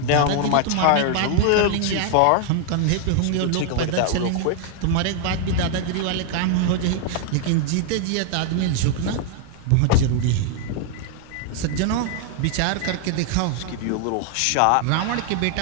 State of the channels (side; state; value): both; different; correlation 0.00